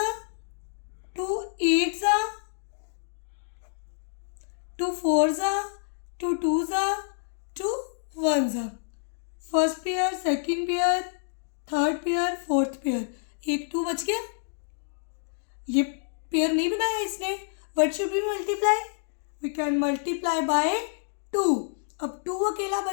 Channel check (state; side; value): silent; right; digital silence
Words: 2 8 ज़ा 2 4 ज़ा 2 2 ज़ा 2 1 ज़ा. First pair, second pair, third pair, fourth pair. एक 2 बच गया. ये पेयर नहीं बनाया इसने. What should be multiply? We can multiply by 2. अब 2 अकेला